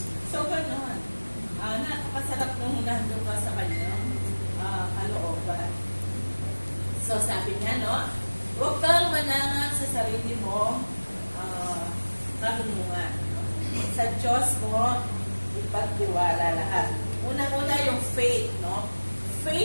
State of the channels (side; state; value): both; inverted; correlation -1.00